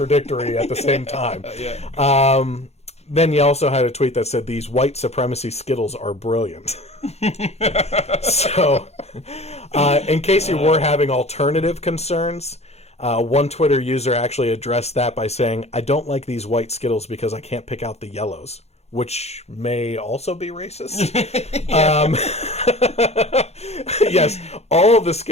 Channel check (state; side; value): late; right; 0.31 ms